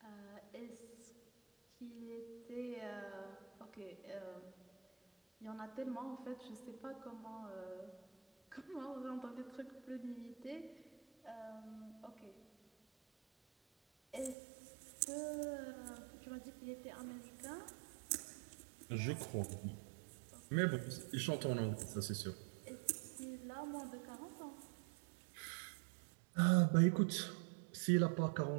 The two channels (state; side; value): drops out; left; at 14.4 s